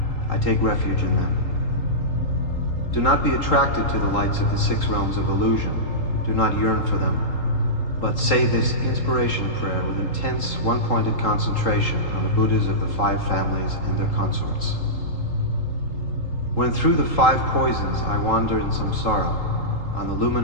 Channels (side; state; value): right; late; 3.8 ms